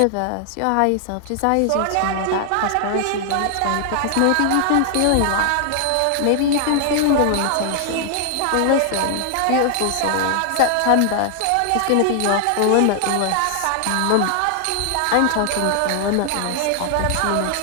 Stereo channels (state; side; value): different; both; correlation 0.00